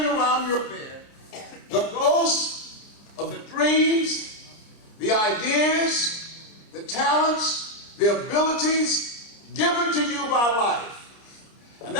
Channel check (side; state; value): right; late; 30 ms